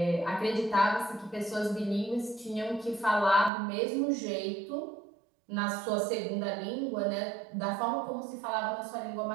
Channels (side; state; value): left; drops out; at 3.5 s